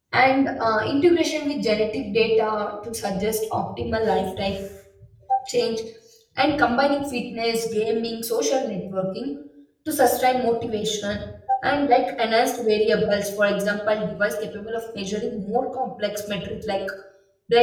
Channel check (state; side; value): identical; both; correlation 1.00